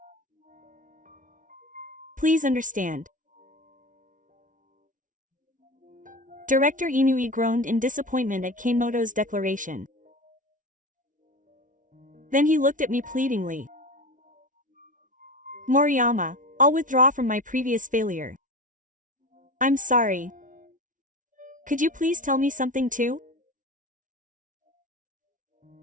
Please understand. Director Inui groaned in disappointment at Kanemoto's declaration. Then he looked at me pleadingly. Moriyama, I'll withdraw from my previous failure. I'm sorry. Could you please tell me something too?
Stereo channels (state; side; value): late; left; 0.38 ms